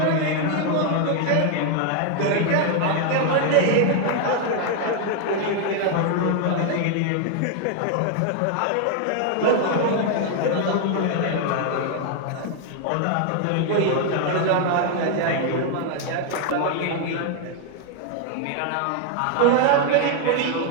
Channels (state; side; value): different; both; correlation 0.00